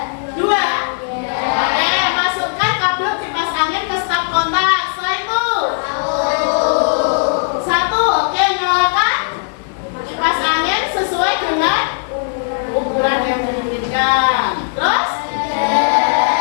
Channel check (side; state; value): right; silent; digital silence